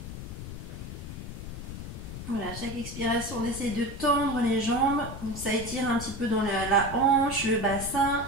Voilà, chaque expiration, on essaie de tendre les jambes. Donc ça étire un petit peu dans la hanche, le bassin,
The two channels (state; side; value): noise; left; rumble, 9 dB below the sound